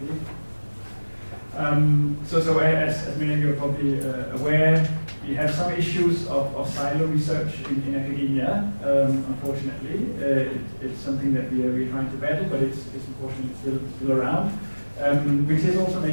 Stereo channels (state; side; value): inverted; both; correlation -1.00